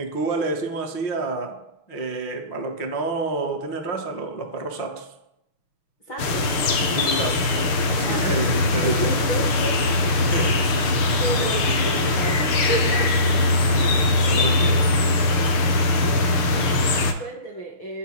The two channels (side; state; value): right; late; 6.2 ms